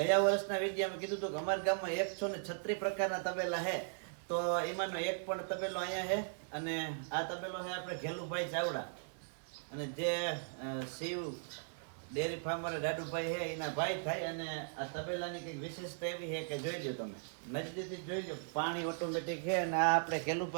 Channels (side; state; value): left; silent; digital silence